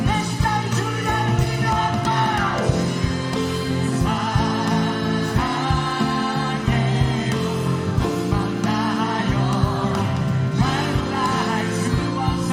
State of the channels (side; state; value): both; identical; correlation 1.00